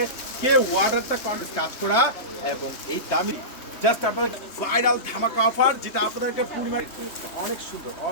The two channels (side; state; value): right; late; 3.3 ms